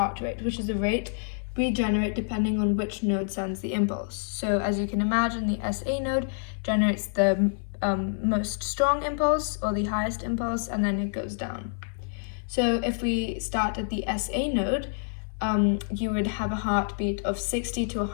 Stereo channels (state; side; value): silent; right; digital silence